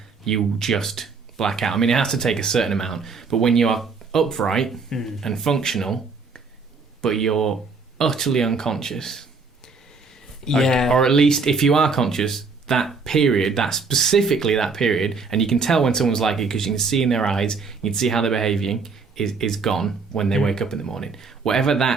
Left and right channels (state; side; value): quieter; left; 4.5 dB